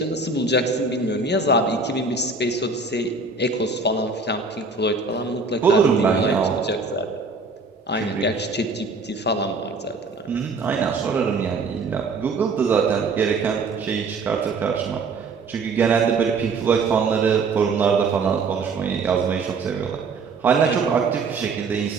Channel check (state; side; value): quieter; left; 4.1 dB